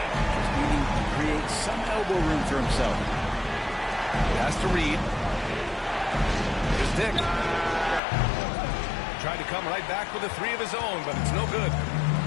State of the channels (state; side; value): drops out; right; at 8.0 s